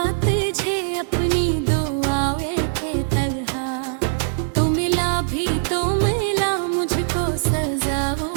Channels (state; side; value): silent; left; digital silence